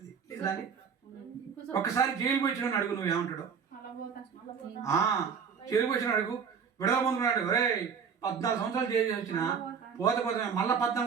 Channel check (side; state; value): left; quieter; 6.5 dB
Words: లేదా అని? ఒక్కసారి జైలు పోయిన అడుగు, నువ్వు ఏమంటాడు? జైలు పోయిన అడుగు, విడుదల పొందుకున్నాడు, ఒరే 14 సంవత్సరాలు జైలు వచ్చిన పోతే మళ్ళీ